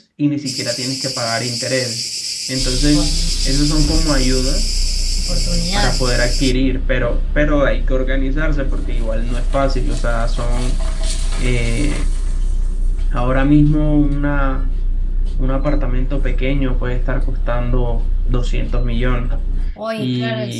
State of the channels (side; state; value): both; identical; correlation 1.00